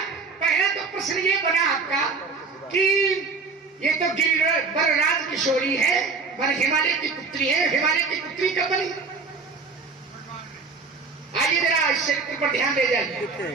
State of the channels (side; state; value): left; quieter; 4.5 dB